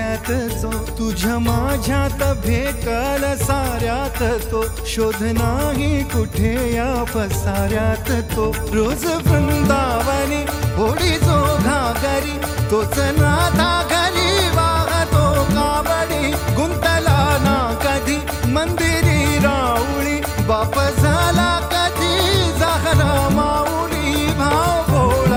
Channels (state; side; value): identical; both; correlation 1.00